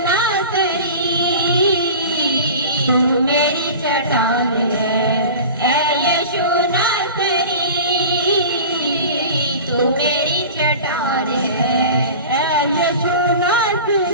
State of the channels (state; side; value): inverted; both; correlation -0.35